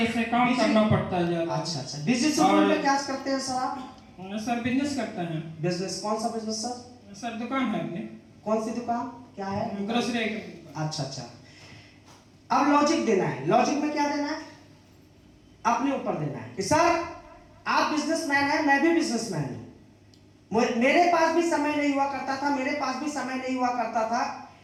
से काम करना पड़ता है ज्यादा। अच्छा, बिजनेस शेड्यूल में क्या करते हैं सर आप? सर बिजनेस करते हैं। बिजनेस कौन सा बिजनेस सर? सर दुकान है अपनी। कौन सी दुकान, क्या है? ग्रोसरी। अच्छा। अब लॉजिक देना है। लॉजिक में क्या देना है? अपने ऊपर देना है कि सर आप बिजनेसमैन हैं, मैं भी बिजनेसमैन हूं। मेरे पास भी समय नहीं हुआ करता था, मेरे पास भी समय नहीं हुआ करता था।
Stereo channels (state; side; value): identical; both; correlation 1.00